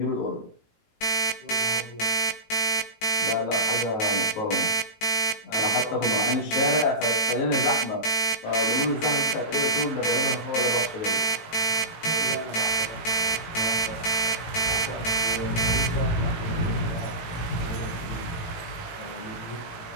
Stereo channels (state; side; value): late; right; 18 ms